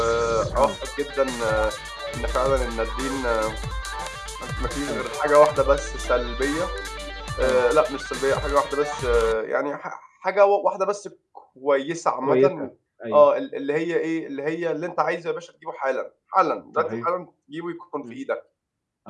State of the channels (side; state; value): both; identical; correlation 1.00